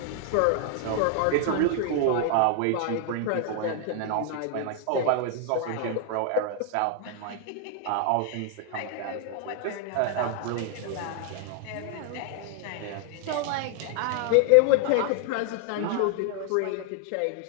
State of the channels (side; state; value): both; different; correlation 0.00